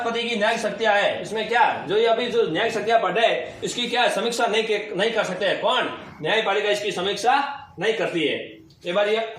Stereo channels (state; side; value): identical; both; correlation 1.00